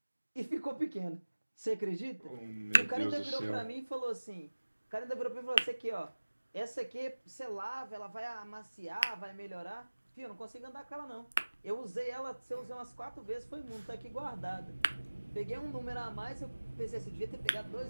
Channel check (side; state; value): both; inverted; correlation -1.00